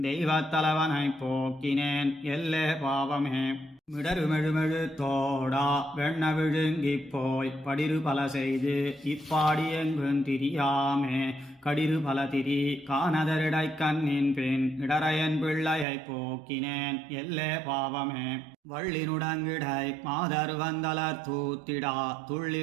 தெய்வத்தலைவனைப் போக்கினேன் எல்லே பாவமே மிடருமெழுமெழு தோடா வெண்ண விழுங்கிப் போய் படிரு பல செய்து இப்பாடி எங்கும் திரியாமே கடிரு பல திரி காணதரிடை கண்ணின் பின் இடரையன் பிள்ளையைப் போக்கினேன் எல்லே பாவமே வள்ளினுடங்கிடை மாதர் வந்தலர் தூத்திடா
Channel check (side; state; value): left; drops out; at 15.9 s